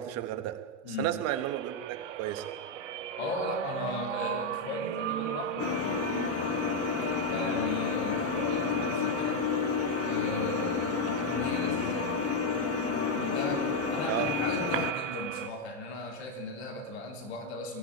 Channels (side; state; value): both; normal; correlation 0.02